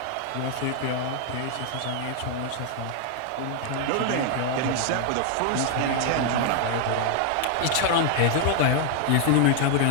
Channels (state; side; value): different; both; correlation 0.00